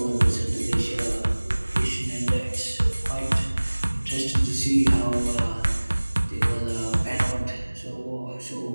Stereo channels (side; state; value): both; inverted; correlation -1.00